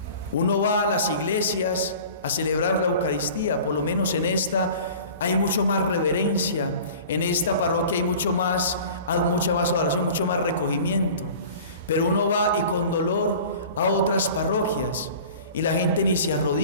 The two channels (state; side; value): inverted; both; correlation -0.42